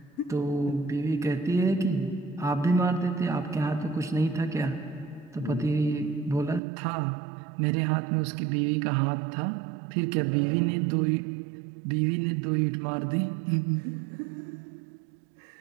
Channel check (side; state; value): left; drops out; at 6.6 s